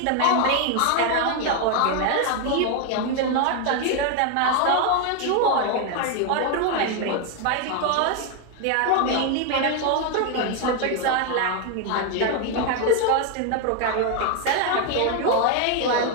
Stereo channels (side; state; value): both; different; correlation 0.01